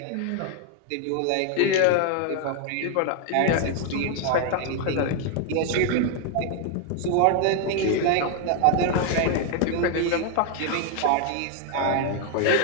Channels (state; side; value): different; both; correlation 0.00